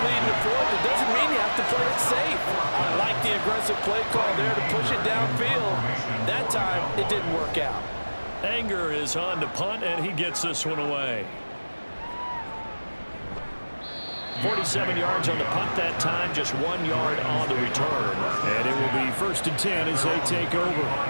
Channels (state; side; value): inverted; both; correlation -1.00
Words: lead in the 4th, it doesn't mean you have to play it safe. I like the aggressive play call there to push it downfield. That time, it didn't work out. Anger is on to punt, and he gets this one away. 47 yards on the punt that time, just 1 yard on the return. And it will be 1st and 10 as they take over.